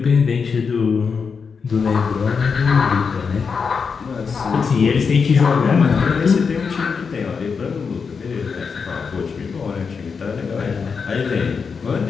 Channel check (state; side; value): quieter; right; 5.6 dB